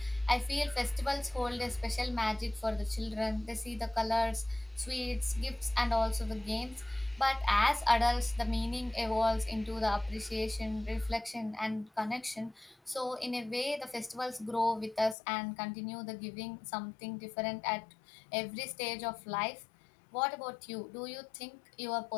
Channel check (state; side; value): drops out; right; at 15.2 s